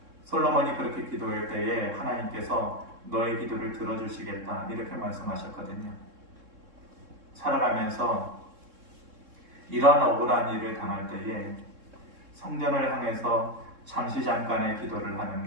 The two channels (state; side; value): late; left; 3.6 ms